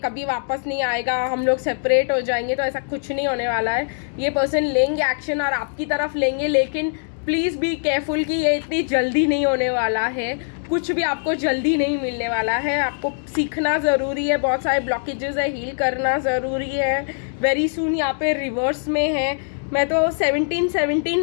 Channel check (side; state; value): right; silent; digital silence